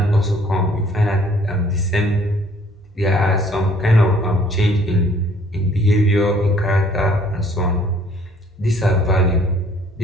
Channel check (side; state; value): both; normal; correlation 0.59